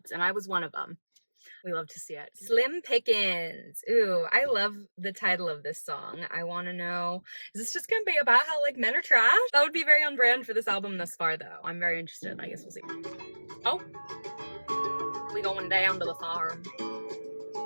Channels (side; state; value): both; inverted; correlation -1.00